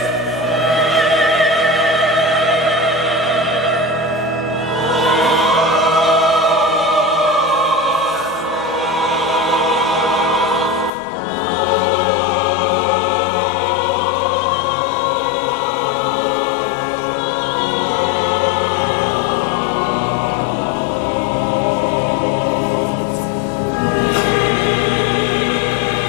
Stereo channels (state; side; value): drops out; right; at 10.9 s